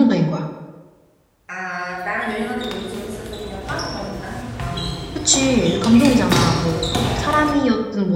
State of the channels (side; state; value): both; identical; correlation 1.00